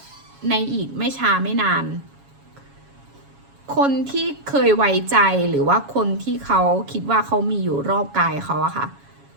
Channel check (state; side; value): late; left; 7.2 ms